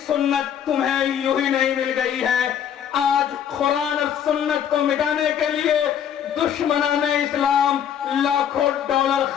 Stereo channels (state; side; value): quieter; right; 9.0 dB